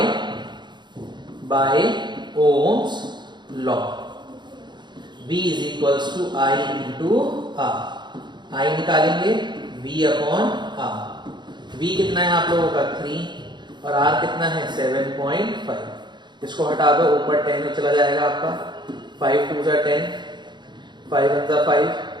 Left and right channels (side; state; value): left; late; 0.22 ms